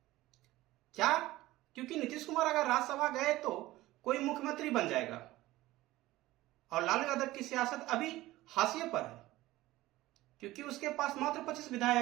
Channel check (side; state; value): left; quieter; 17.3 dB